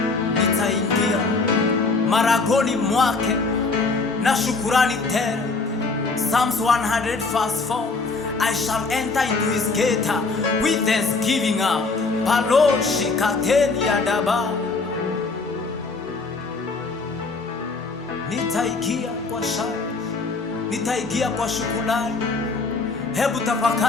nitaingia maragoni mwake na shukurani tele. Psalms 100 verse 4, I shall enter into his gate with thanksgiving. Paloshi kateni ya daba, nitaingia kwa shangwe, nitaingia kwa shukrani. Hebu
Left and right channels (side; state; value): right; quieter; 3.9 dB